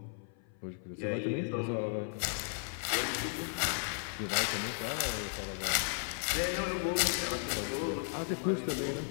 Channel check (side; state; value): right; silent; 54 dB below the other